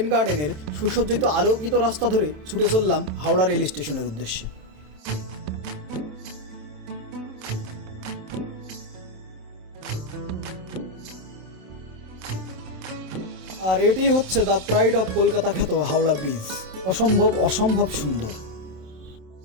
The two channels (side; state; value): left; late; 27 ms